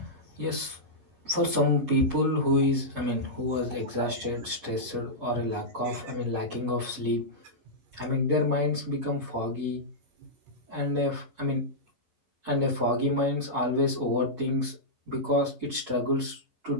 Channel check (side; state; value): left; late; 11 ms